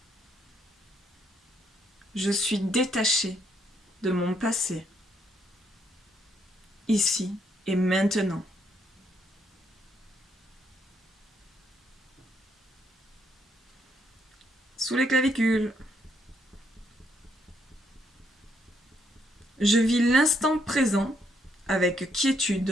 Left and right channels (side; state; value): both; normal; correlation 0.73